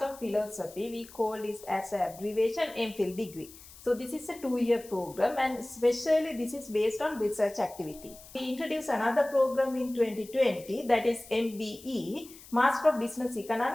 of Philosophy. We call this as an abbreviation MPhil degree. So this is a 2-year program, and especially this is based on research activity. We introduced another program in 2020, that is MBE, Master of Business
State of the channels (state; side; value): noise; left; hiss, 19 dB below the sound